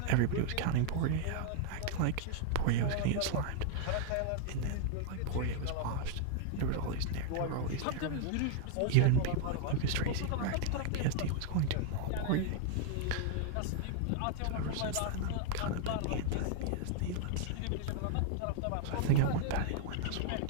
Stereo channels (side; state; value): both; different; correlation 0.00